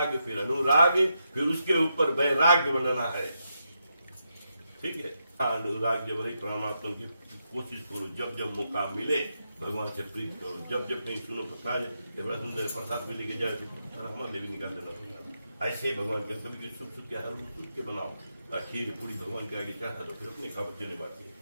फिर अनुराग, फिर उसके ऊपर वैराग्य बनाना है। ठीक है, अनुराग जब रही परमात्मा की कोशिश करो, जब जब मौका मिले भगवान से प्रीत करो, जब जब कहीं सुनो प्रसाद बड़ा सुंदर प्रसाद मिले के जाए हमारे लिए निकाल देना। ऐसे भगवान के कभी सुख सुख के हर सुख के बनाओ, खीर पूरी भगवान के आगे चढ़ा दो, फिर अपने खा बच्चे ने बात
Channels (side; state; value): both; inverted; correlation -0.83